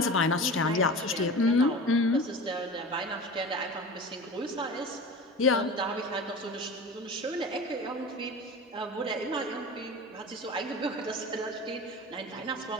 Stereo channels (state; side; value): normal; both; correlation 0.34